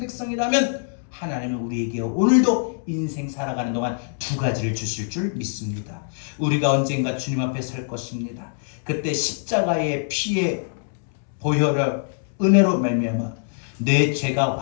하나님은 우리에게 오늘도 인생 살아가는 동안 두 가지를 주실 줄 믿습니다. 우리가 언젠가 주님 앞에 설 것입니다. 그때 십자가의 피의 보혈을 은혜로 말미암아 내 죄가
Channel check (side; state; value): right; silent; 63 dB below the other